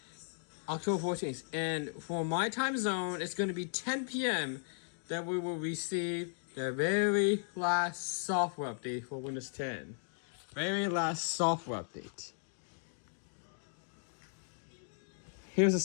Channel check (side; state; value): right; silent; digital silence